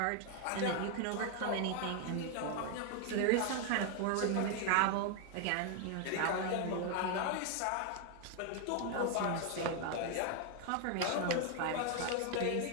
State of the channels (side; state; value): both; different; correlation 0.01